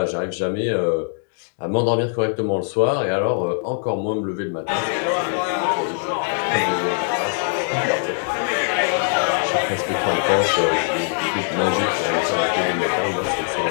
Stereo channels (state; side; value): silent; right; digital silence